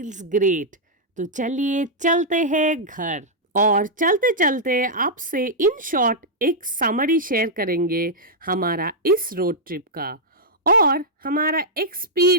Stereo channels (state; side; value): normal; both; correlation -0.07